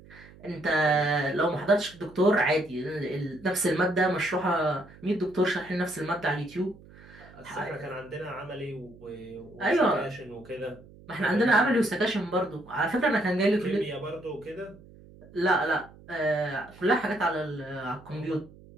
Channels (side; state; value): right; noise; hum, 22 dB below the sound